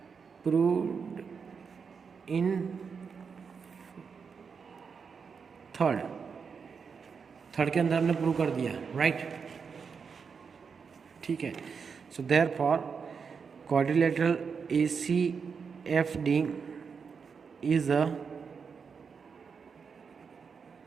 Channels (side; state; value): left; quieter; 5.9 dB